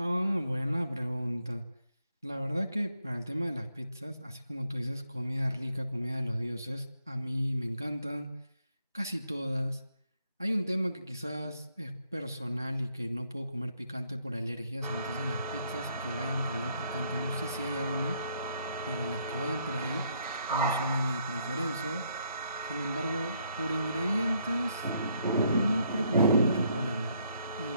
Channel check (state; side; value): inverted; both; correlation -0.72